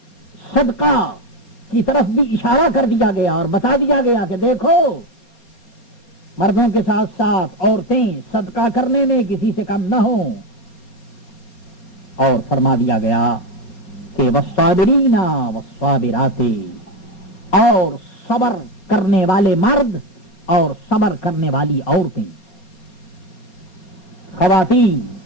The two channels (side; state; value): right; late; 4.3 ms